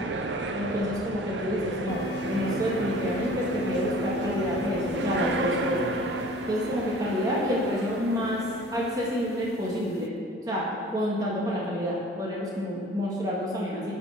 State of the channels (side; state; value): both; normal; correlation 0.47